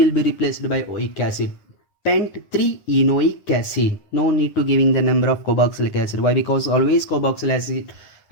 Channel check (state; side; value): late; right; 9.9 ms